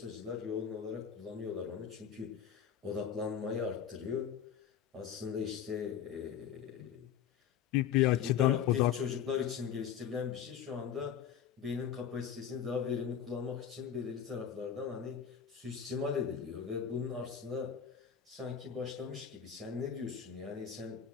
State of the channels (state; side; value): quieter; right; 8.5 dB